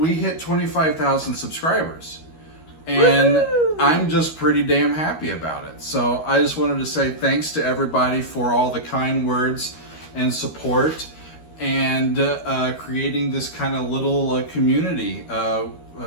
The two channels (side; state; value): right; late; 13 ms